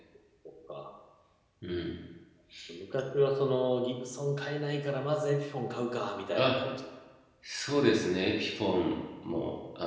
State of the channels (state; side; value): identical; both; correlation 1.00